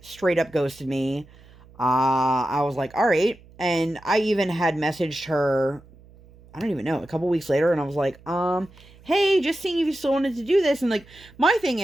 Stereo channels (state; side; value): noise; right; hum, 24 dB below the sound